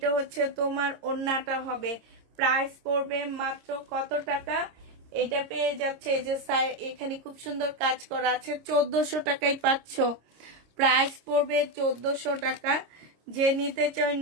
হচ্ছে তোমার ওড়নাটা হবে। প্রাইস পড়বে মাত্র কত টাকা? এটা পেয়ে যাচ্ছে এই যে এখানে খুব সুন্দর কাজ করা আছে, 1400 টাকায় পাচ্ছ। প্রাইস পড়বে 1400 টাকা। যে নিতে চাও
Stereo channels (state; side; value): late; left; 26 ms